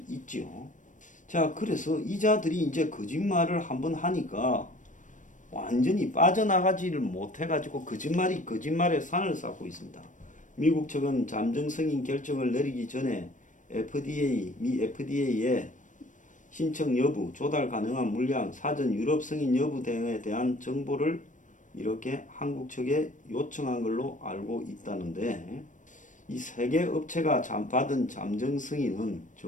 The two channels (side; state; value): right; late; 0.37 ms